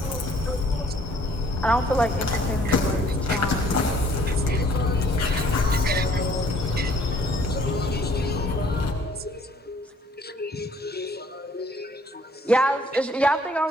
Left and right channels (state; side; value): normal; both; correlation 0.60